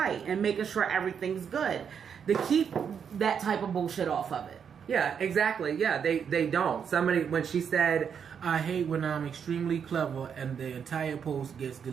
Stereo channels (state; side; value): quieter; left; 7.3 dB